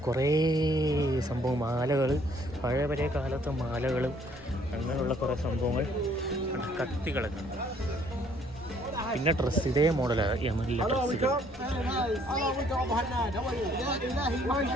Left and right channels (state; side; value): normal; both; correlation 0.62